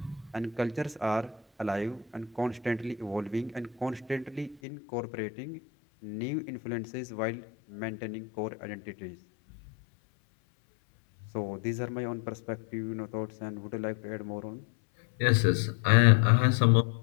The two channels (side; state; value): right; drops out; at 4.6 s